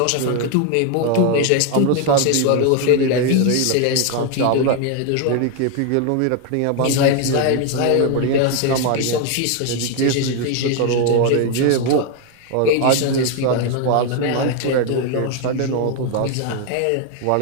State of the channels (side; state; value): both; different; correlation 0.01